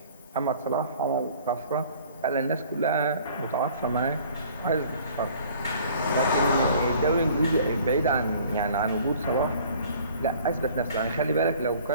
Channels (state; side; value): inverted; both; correlation -0.52